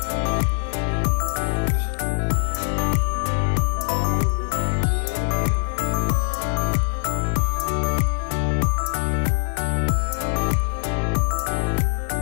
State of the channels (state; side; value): silent; right; digital silence